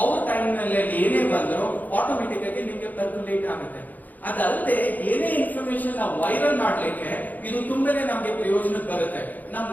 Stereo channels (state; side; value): late; right; 0.082 ms